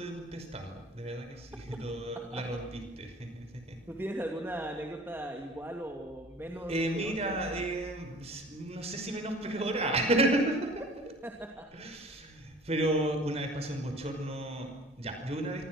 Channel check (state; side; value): normal; both; correlation 0.48